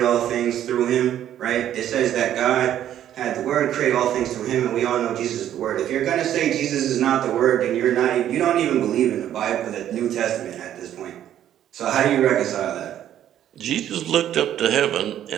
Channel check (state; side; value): quieter; left; 11.1 dB